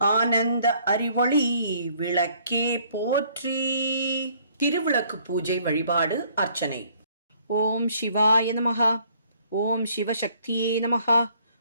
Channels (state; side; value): inverted; both; correlation -0.62